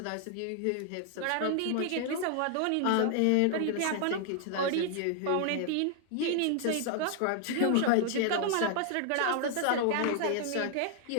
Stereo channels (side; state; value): both; different; correlation 0.00